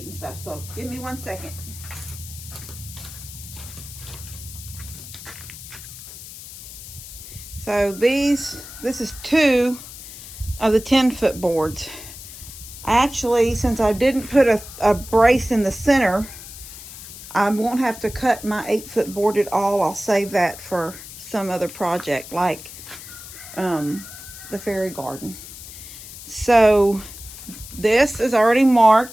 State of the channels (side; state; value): left; noise; hiss, 14 dB below the sound